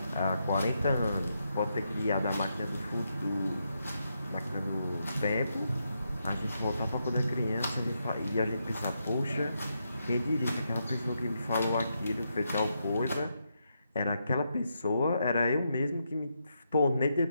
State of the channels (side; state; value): both; inverted; correlation -0.82